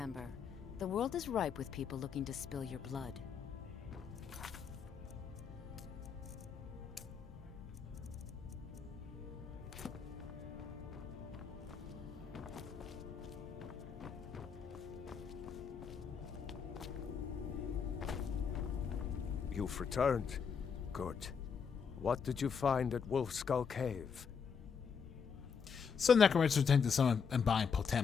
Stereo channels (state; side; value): quieter; right; 6.3 dB